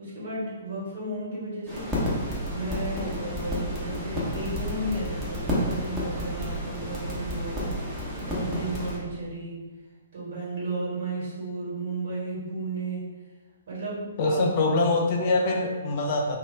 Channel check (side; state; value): both; inverted; correlation -0.47